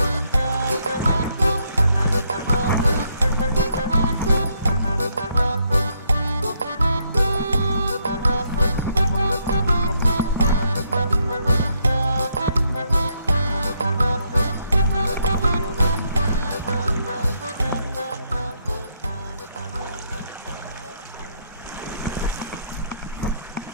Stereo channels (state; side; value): inverted; both; correlation -0.74